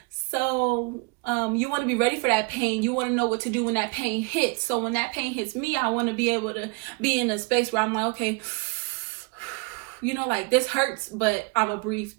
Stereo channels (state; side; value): quieter; left; 30.5 dB